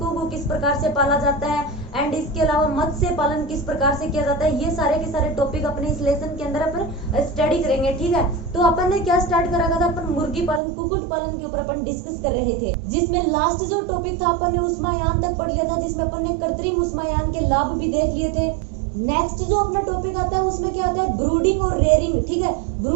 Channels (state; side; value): drops out; left; at 10.6 s